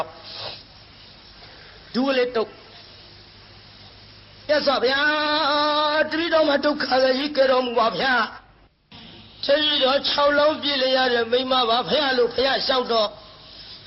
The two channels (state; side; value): identical; both; correlation 1.00